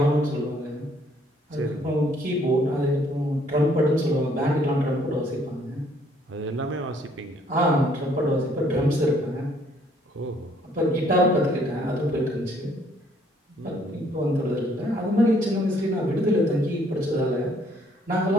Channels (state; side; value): normal; both; correlation 0.64